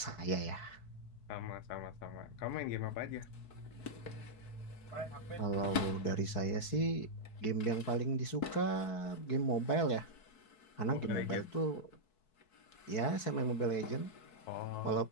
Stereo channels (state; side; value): late; right; 4.6 ms